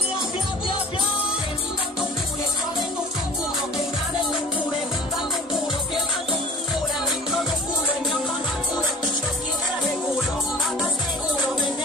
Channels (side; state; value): both; normal; correlation 0.43